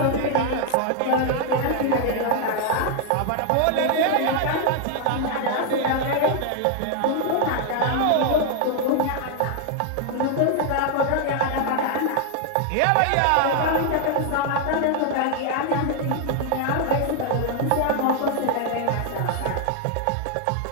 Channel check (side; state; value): both; different; correlation 0.00